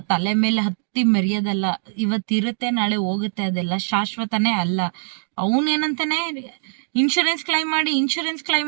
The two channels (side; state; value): left; silent; 64 dB below the other